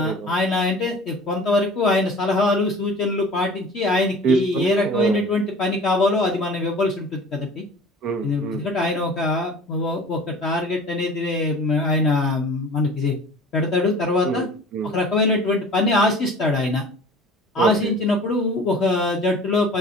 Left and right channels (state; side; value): normal; both; correlation 0.43